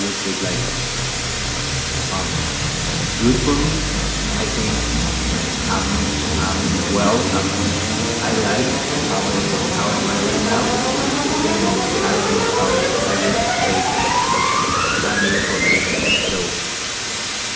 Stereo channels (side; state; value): both; identical; correlation 1.00